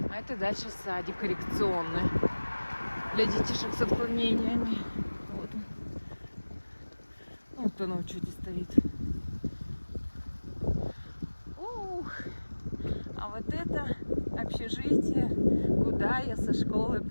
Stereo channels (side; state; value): both; inverted; correlation -1.00